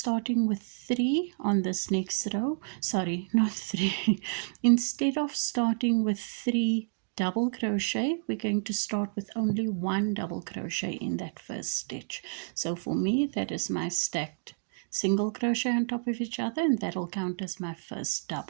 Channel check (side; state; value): left; silent; digital silence